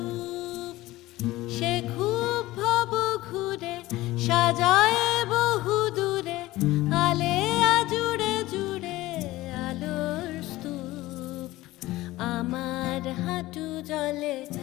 সে খুব ভব ঘুরে সাজায় বহু দূরে, আলেয়া জুড়ে জুড়ে আলোর স্তূপ। আমার হাঁটু জলে,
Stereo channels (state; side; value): quieter; right; 17.7 dB